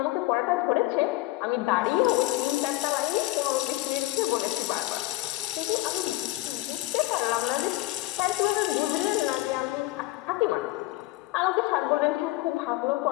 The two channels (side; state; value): right; quieter; 19.1 dB